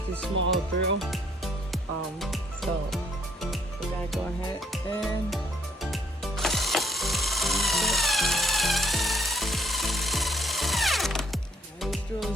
this small drill, so we're gonna go ahead and this drill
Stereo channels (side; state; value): both; normal; correlation 0.69